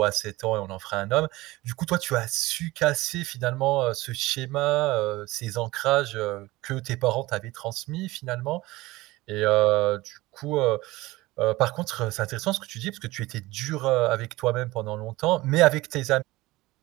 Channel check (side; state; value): left; quieter; 19.4 dB